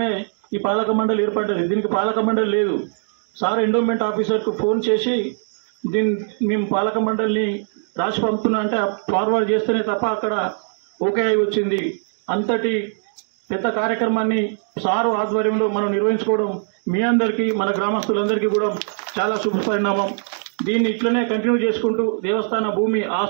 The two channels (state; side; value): silent; left; digital silence